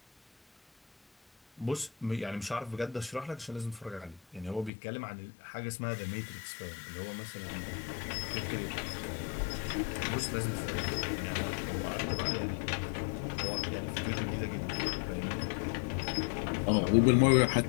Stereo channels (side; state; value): right; drops out; at 4.7 s